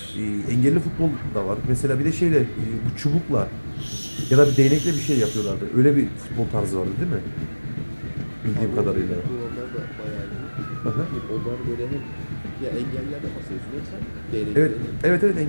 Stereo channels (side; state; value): both; inverted; correlation -1.00